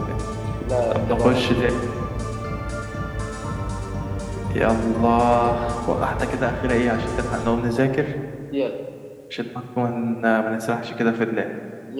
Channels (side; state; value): both; identical; correlation 1.00